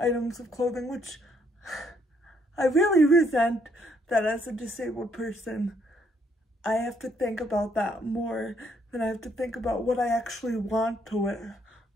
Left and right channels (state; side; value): normal; both; correlation 0.70